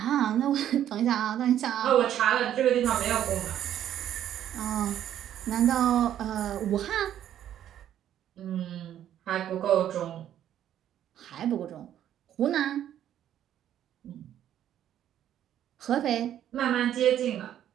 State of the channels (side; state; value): left; quieter; 10.9 dB